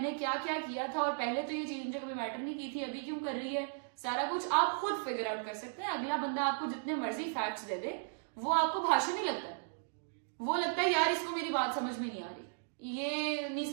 क्या क्या किया था और पहले तो ये चीज मुझे कभी मैटर नहीं की थी, अभी क्यों कर रही है। सारा कुछ आप खुद फिगर आउट कर सकते हैं। अगला बंदा आपको जितने मर्जी फैक्ट्स दे दे, वो आपको भाषण नहीं लगता है, वो लगता है यार इसको मेरी बात समझ में नहीं आ रही, ये नहीं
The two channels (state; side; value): silent; left; digital silence